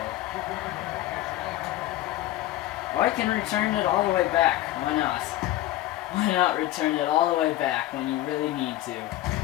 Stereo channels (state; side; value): quieter; right; 15.1 dB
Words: Or I can return it all the way back. Why not? Why not return it all the way back when you really need to?